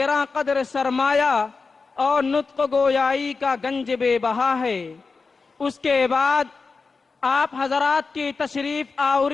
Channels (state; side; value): quieter; right; 4.5 dB